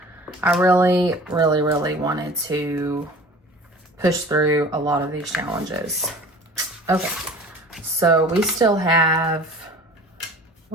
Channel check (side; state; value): both; normal; correlation 0.43